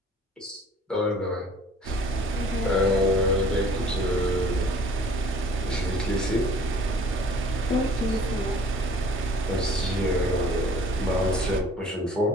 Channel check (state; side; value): normal; both; correlation 0.53